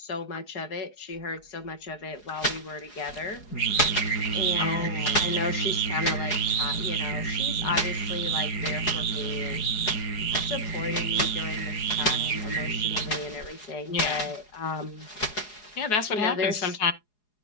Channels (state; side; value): late; right; 4.8 ms